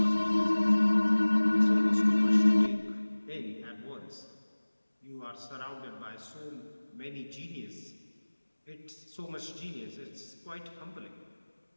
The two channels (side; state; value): both; inverted; correlation -1.00